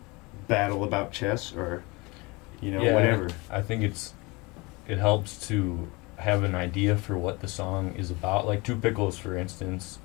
battle about chess, or you know, whatever. I think it helps to have an idea for what the song is about. Like Two Pickles, for instance.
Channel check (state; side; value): quieter; right; 25.5 dB